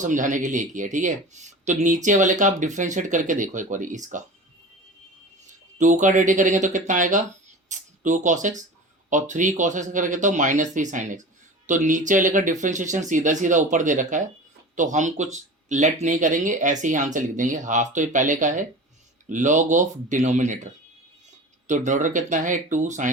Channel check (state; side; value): normal; both; correlation 0.35